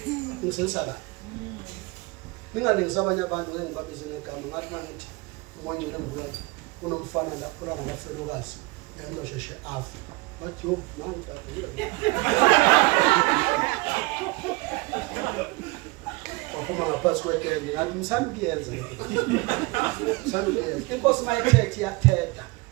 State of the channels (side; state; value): left; quieter; 24.8 dB